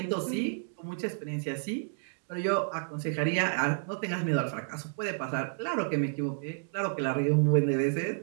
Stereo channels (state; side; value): silent; left; digital silence